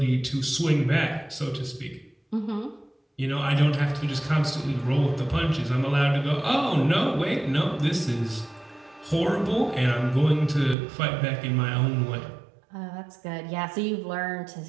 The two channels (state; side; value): drops out; left; at 10.8 s